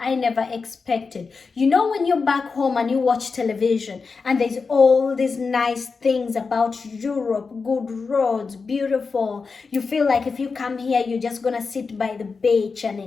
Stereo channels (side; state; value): right; quieter; 4.7 dB